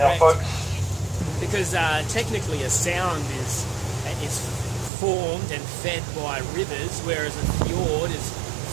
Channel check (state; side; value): drops out; left; at 4.9 s